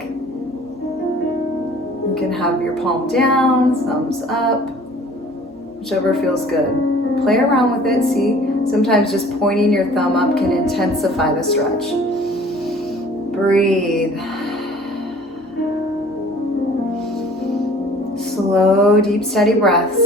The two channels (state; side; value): normal; both; correlation 0.50